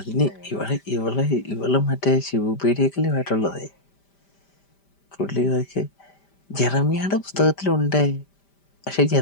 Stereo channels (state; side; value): late; right; 5.1 ms